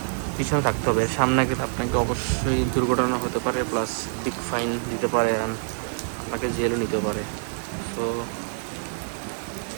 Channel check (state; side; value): silent; left; digital silence